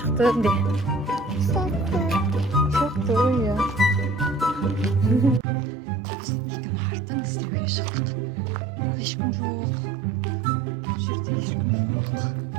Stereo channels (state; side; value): drops out; left; at 5.4 s